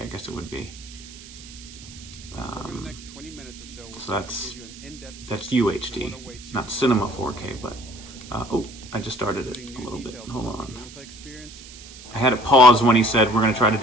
I guess it would be. So that's UHD, not Cinema 4K, but... I just started it a little bit. Hold on. I had it pause when he said we're going to try to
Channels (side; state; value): right; noise; hiss, 17 dB below the sound